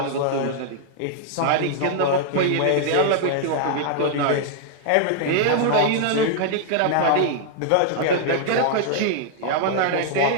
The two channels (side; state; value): both; different; correlation -0.01